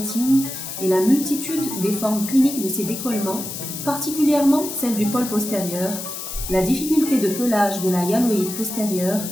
et la multitude des formes cliniques de ces décollements, particulièrement celle du pôle postérieur, la difficulté de pelage de la hyaloïde postérieure,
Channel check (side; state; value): left; noise; hiss, 8 dB below the sound